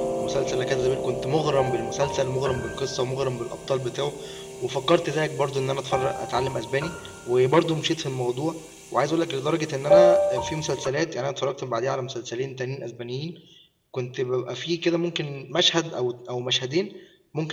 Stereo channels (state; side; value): identical; both; correlation 1.00